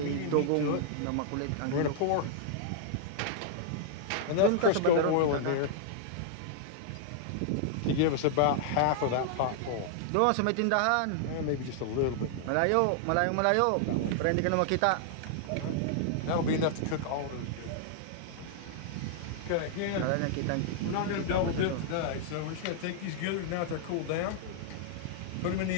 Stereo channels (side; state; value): both; different; correlation -0.01